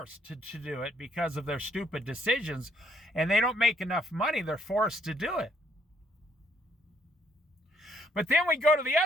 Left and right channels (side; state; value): both; normal; correlation 0.70